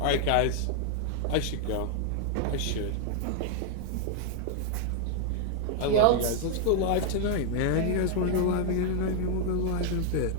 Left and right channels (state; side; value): different; both; correlation 0.00